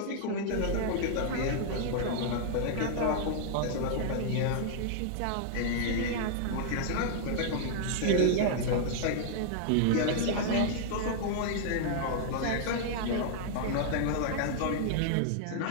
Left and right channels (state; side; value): different; both; correlation -0.01